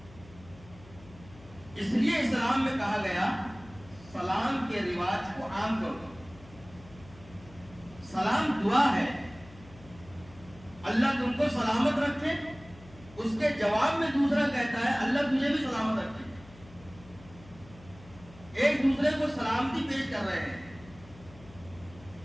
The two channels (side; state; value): left; noise; hum, 20 dB below the sound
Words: اس لیے اسلام میں کہا گیا سلام کے رواج کو عام کرو. سلام دعا ہے، اللہ تم کو سلامت رکھے. اس کے جواب میں دوسرا کہتا ہے اللہ تجھے بھی سلامت رکھے. ایک دوسرے کو سلامتی پیش کر رہے ہیں.